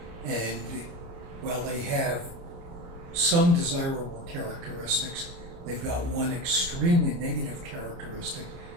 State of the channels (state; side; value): late; left; 29 ms